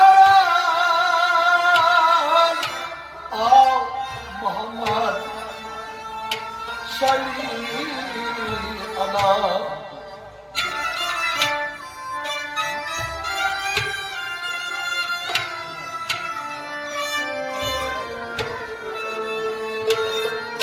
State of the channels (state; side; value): identical; both; correlation 1.00